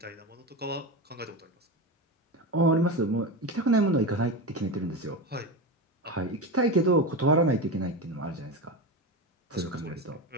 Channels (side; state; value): both; normal; correlation 0.21